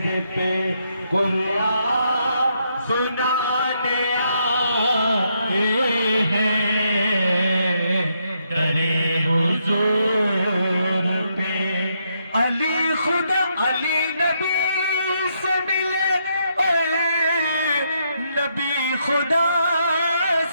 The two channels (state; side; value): inverted; both; correlation -0.77